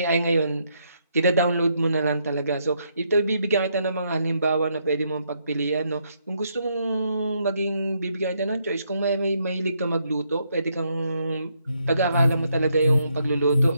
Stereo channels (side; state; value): both; inverted; correlation -0.75